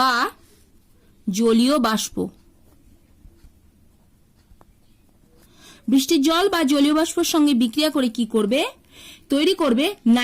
জলীয় বাষ্প। বৃষ্টির জল বা জলীয় বাষ্পের সঙ্গে বিক্রিয়া করে কি করবে? তৈরি করবে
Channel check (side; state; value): both; identical; correlation 1.00